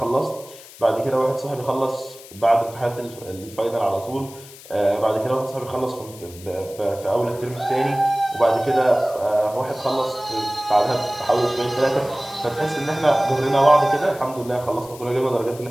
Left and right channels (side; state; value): left; noise; hiss, 19 dB below the sound